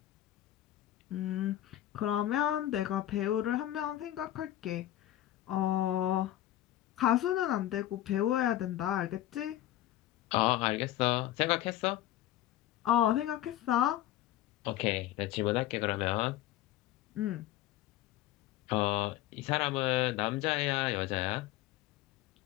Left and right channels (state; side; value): quieter; right; 13.7 dB